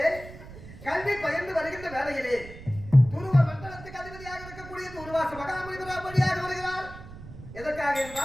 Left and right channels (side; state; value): right; noise; rumble, 15 dB below the sound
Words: கல்வி பயிர்ந்து வருகின்ற வேலையிலே துருவ மண்டலத்துக்கு அதிபதியாக இருக்கக்கூடிய துருவாச மகாமுனிவராக வழியாக வருகிறார். எதற்காக